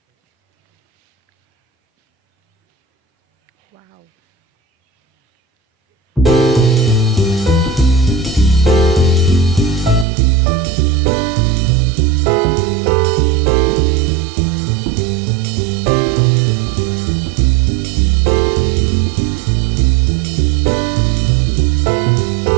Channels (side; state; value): left; drops out; at 10.1 s